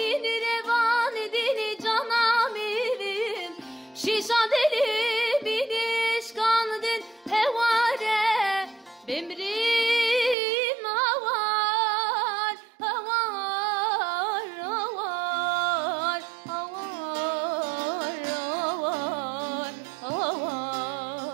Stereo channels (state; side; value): drops out; left; at 10.4 s